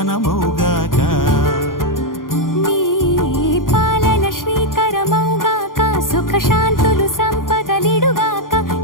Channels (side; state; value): right; late; 0.90 ms